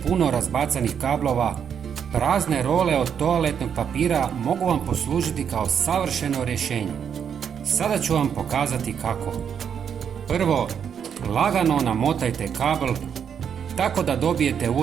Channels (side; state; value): left; quieter; 7.8 dB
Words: razbacanih kablova, prazne role od toaletnog papira mogu vam poslužiti kao savršeno rješenje. Sada ću vam pokazati kako. Prvo, lagano namotajte kabel tako da dobijete